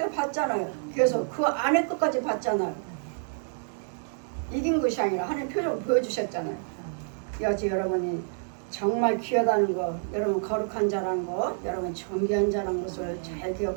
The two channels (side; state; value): left; silent; 59 dB below the other